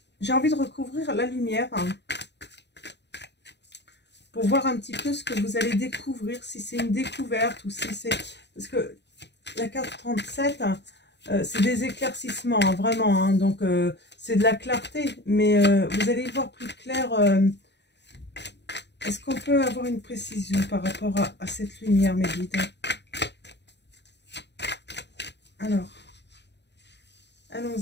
J'ai envie de recouvrir la lumière. Hein, pour voir un petit peu ce que vous allez découvrir, si c'est une découverte ou si c'est... Parce que la carte 37, c'est des éclaircissements, hein, vraiment. Hein, donc, c'est de la clarté, mais vous allez y voir plus clair. Est-ce qu'on peut avoir une précision par rapport à cette lumière, mes guides? Alors,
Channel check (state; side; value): late; right; 0.50 ms